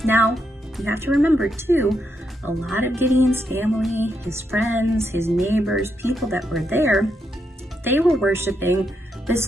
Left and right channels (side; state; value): both; normal; correlation 0.81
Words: Now, you have to remember too, a lot of Gideon's family, his friends, his neighbors, people that were there, they were worshiping this